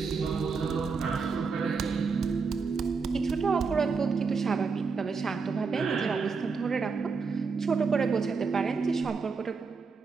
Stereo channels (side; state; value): left; quieter; 5.0 dB